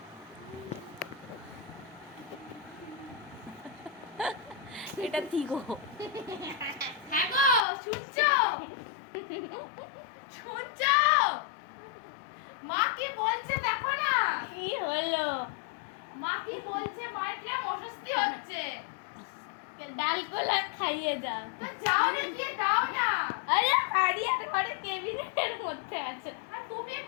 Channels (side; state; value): right; drops out; at 7.7 s